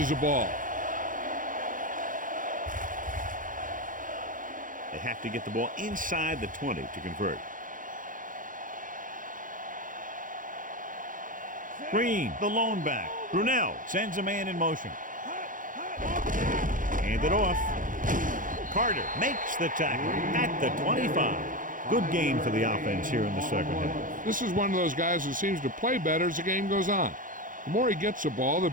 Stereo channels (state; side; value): late; left; 0.39 ms